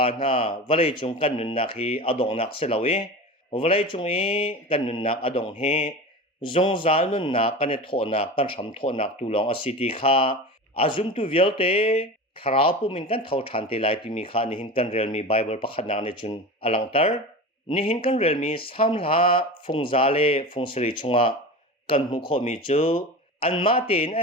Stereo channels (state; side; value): normal; both; correlation 0.30